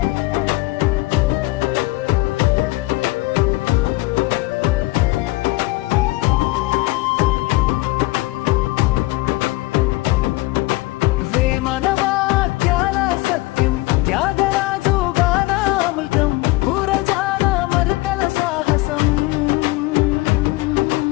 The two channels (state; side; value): quieter; right; 20.8 dB